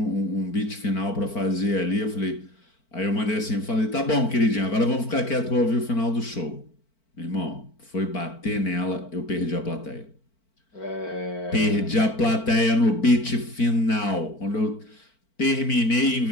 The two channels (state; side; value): late; right; 4.5 ms